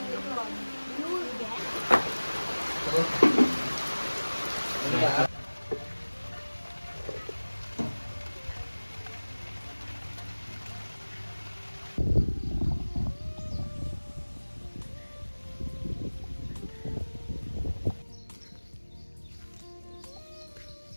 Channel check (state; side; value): inverted; both; correlation -1.00